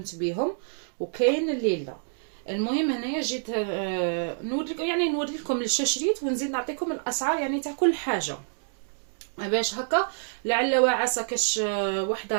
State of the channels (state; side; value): silent; left; digital silence